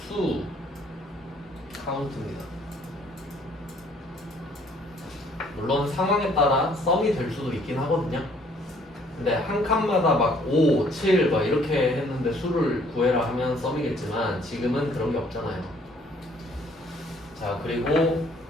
수 카운트입니다. 물론 상황에 따라 썸이 될 수도 있긴 하거든요. 근데 한 칸마다 막 5, 7 막 이렇게 했는데 수를 구해라 하면 썸이겠지만 지금은 그런 게 없잖아요. 자, 그리고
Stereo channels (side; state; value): both; normal; correlation 0.61